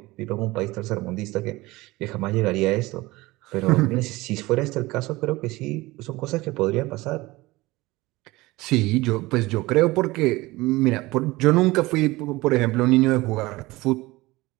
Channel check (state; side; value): quieter; left; 20.4 dB